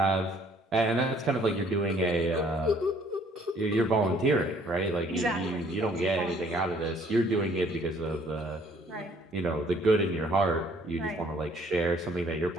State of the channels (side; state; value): both; normal; correlation 0.60